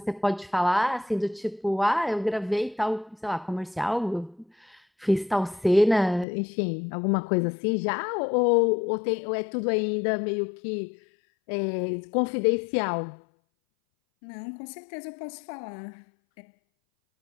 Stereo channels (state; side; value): drops out; right; at 6.2 s